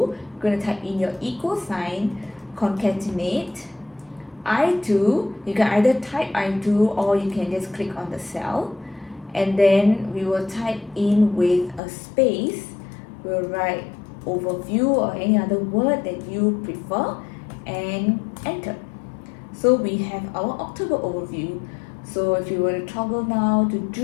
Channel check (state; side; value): drops out; right; at 11.8 s